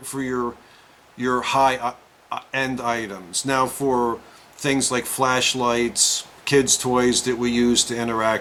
your high end items. Now for things like flashlights, kids' toys that we use to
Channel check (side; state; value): both; identical; correlation 1.00